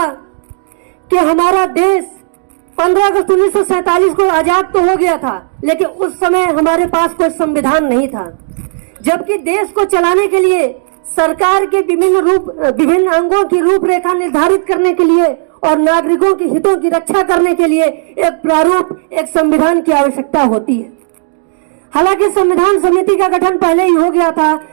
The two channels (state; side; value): silent; left; digital silence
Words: कि हमारा देश 15 अगस्त 1947 को आजाद तो हो गया था, लेकिन उस समय हमारे पास कोई संविधान नहीं था। जबकि देश को चलाने के लिए सरकार के विभिन्न अंगों की रूपरेखा निर्धारित करने के लिए और नागरिकों के हितों की रक्षा करने के लिए एक प्रारूप, एक संविधान की आवश्यकता होती है। हालांकि संविधान समिति का गठन पहले ही हो गया था,